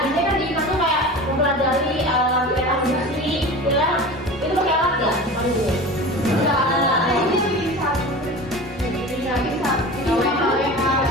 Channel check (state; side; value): normal; both; correlation 0.34